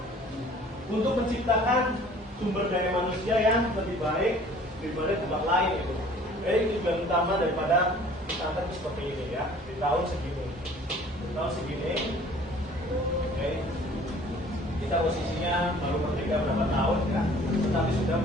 untuk menciptakan sumber daya manusia yang lebih baik daripada tempat lain gitu. Jadi tujuan utama daripada pesantren seperti ini ya, di tahun segini. Di tahun segini, oke. Kita posisinya baru merdeka berapa tahun ya, tetapi sudah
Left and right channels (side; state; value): both; normal; correlation 0.51